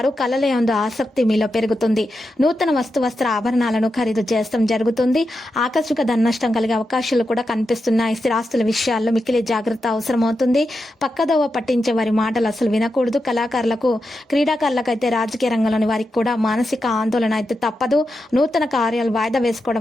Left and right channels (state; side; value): normal; both; correlation 0.88